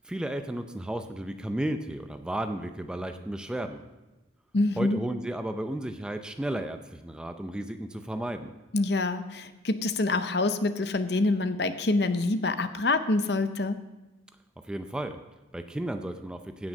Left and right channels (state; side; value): normal; both; correlation 0.62